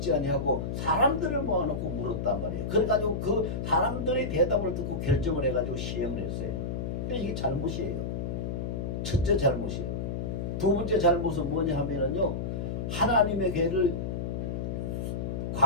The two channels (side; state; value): left; noise; hum, 3 dB below the sound